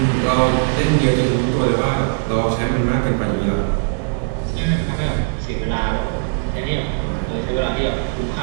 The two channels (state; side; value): silent; left; digital silence